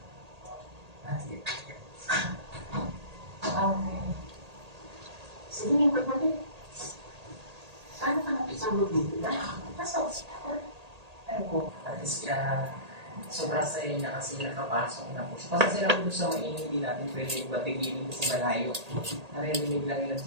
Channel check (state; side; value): late; left; 1.8 ms